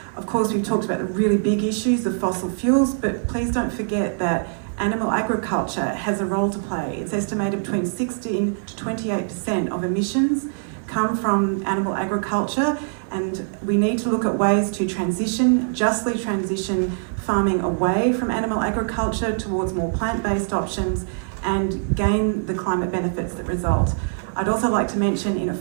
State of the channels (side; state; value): left; silent; 63 dB below the other